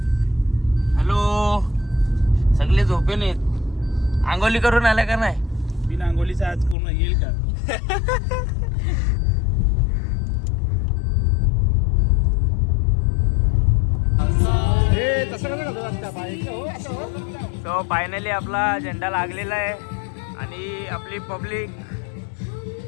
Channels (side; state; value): right; drops out; at 6.8 s